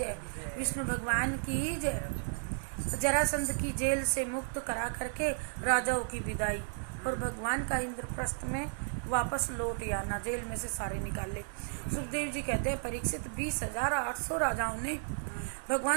विष्णु भगवान की जय। जरासंध की जेल से मुक्त करा करके राजाओं की विदाई और भगवान का इंद्रप्रस्थ में वापस लौट आना, जेल में से सारे निकाले। सुखदेव जी कहते हैं परीक्षित 20,800 राजाओं ने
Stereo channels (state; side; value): silent; left; digital silence